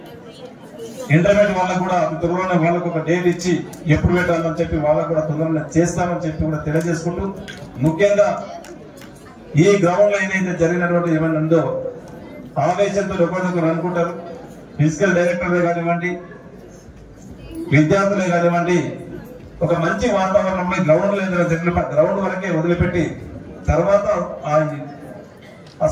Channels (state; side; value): identical; both; correlation 1.00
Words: ఇంటర్మీడియట్ వాళ్ళకు కూడా త్వరలోనే వాళ్ళకు ఒక డేట్ ఇచ్చి ఎప్పుడు పెట్టాలని చెప్పి వాళ్ళకు కూడా తొందరగా చేస్తామని చెప్పి కూడా తెలియజేసుకుంటూ, ముఖ్యంగా ఈ గ్రౌండ్ లో ఏదైతే జరిగినటువంటి ఏమైనా ఉందో ఆవేశంతో ఒకరికొకరు అనుకుంటారు. ఫిజికల్ డైరెక్టర్లే కానివ్వండి, విద్యార్థులే కానివ్వండి, ఒక మంచి వాతావరణంలో గ్రౌండ్ వరకే వదిలిపెట్టి తర్వాత ఆ